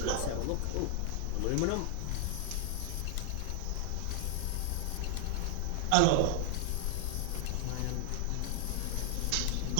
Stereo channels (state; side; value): different; both; correlation 0.00